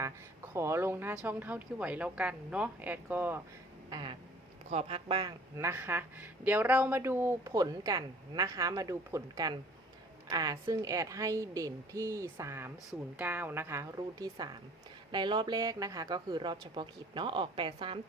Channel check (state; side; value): normal; both; correlation 0.52